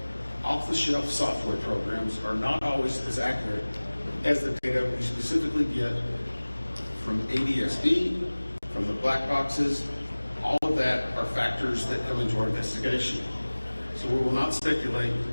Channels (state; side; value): inverted; both; correlation -1.00